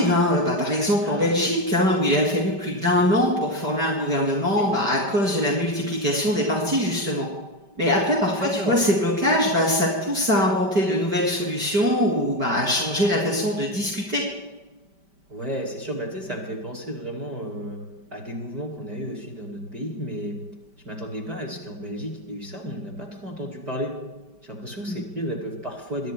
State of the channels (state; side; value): late; left; 5.1 ms